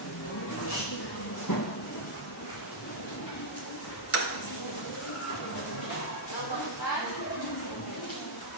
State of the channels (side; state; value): both; normal; correlation -0.03